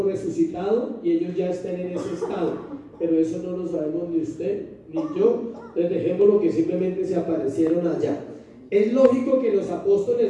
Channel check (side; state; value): both; identical; correlation 1.00